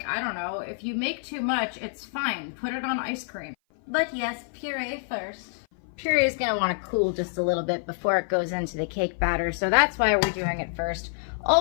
I don't know, if you make too much, it's fine. Put it on ice cream. But yes, puree first. Puree is gonna wanna cool just a little bit before it goes into the cake batter, so that's why we're doing it first.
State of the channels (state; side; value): silent; right; 56 dB below the other